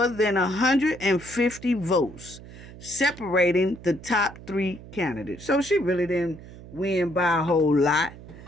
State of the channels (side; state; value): right; noise; hum, 17 dB below the sound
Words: than 150 votes, separating the top 3 candidates. So she really didn't win by a whole lot,